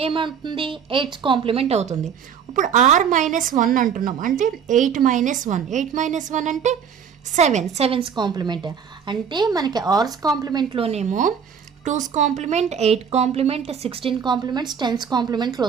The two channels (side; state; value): left; quieter; 7.3 dB